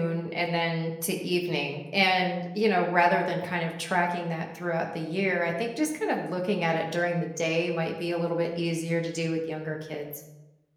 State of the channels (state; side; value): identical; both; correlation 1.00